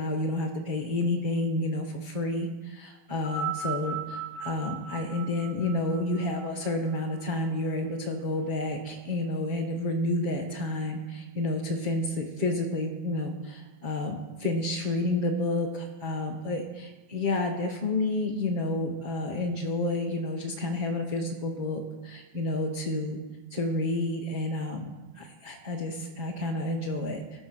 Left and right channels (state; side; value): late; left; 7.3 ms